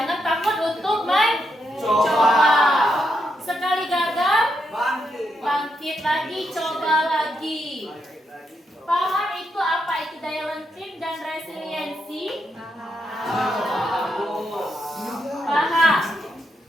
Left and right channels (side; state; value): both; normal; correlation 0.81